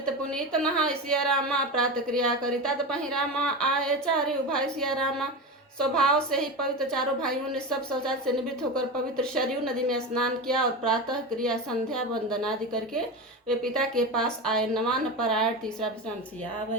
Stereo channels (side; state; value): both; normal; correlation 0.22